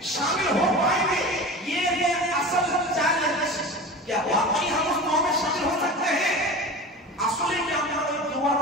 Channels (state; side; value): normal; both; correlation 0.33